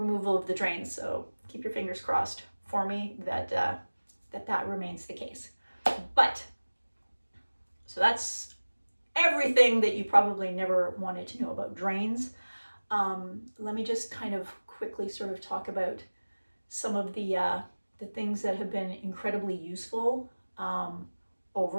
of the drains. So keep your fingers crossed for me that that remains the case. But so that's everything that you probably never wanted to know about drains. Let me just kind of quickly sort of talk about some of the things that have been incredibly useful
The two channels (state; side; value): inverted; both; correlation -1.00